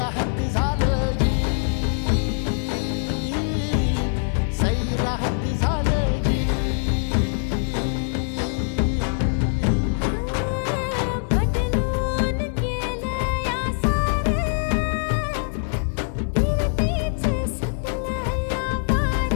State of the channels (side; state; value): right; silent; 63 dB below the other